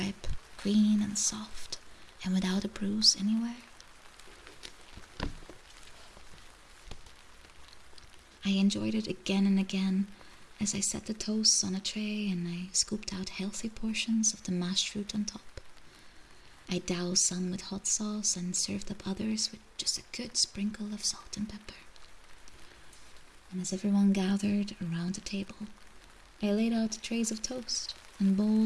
green and soft, and without a bruise anywhere? I enjoyed it again and again as I set the toasts on a tray and I scooped out healthy portions of the mashed fruit on top. I doused some with hot sauce and served up others with just a good sprinkle of salt and pepper. And as everyone gathered around the table, I laid out trays of toast and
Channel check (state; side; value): identical; both; correlation 1.00